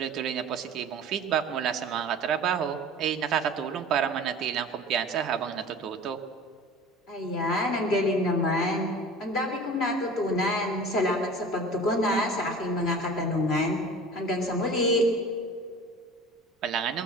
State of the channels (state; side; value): normal; both; correlation 0.40